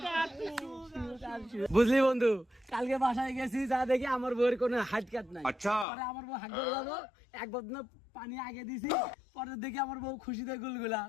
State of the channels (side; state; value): right; drops out; at 5.9 s